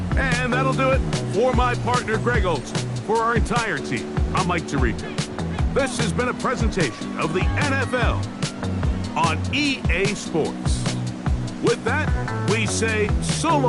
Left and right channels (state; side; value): identical; both; correlation 1.00